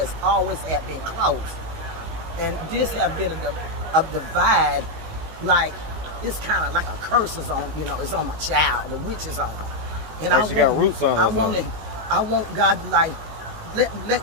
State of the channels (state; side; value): late; left; 19 ms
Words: always been close. And this have been a divide, like it's kind of like a curse is on, it's on my child. The witch is on her, and Like she got roots on her I or want it. something. I want God to like